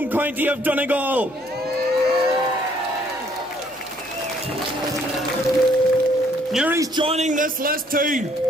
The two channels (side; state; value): both; normal; correlation 0.65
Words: county of Donegal. Newry's joining this list too,